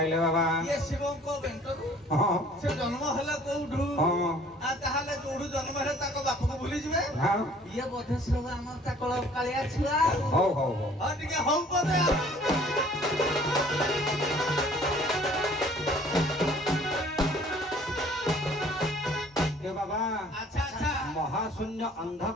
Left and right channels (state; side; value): normal; both; correlation 0.54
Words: ବାବା? ଇଏ ଶିବଙ୍କ ବେଣ୍ଟରୁ ହଁ ସେ ଜନ୍ମ ହେଲା କୋଉଠୁ ହଁ ଆଉ ତାହେଲେ ଯୋଉଠୁ ଜନ୍ମ ହେଲେ ତାଙ୍କ ବାପକୁ ଭୁଲିଯିବେ ହଁ ଇଏ ବୋଧେ ସବୁ ଆମ ଚାକଳ କାଳିଆ ଛୁଆ ହଉ ହଉ ହଉ ଆଉ ଟିକେ ହଉ ବୋଧେ ଏ ବାବା ଆଚ୍ଛା ଆଚ୍ଛା महाशून्य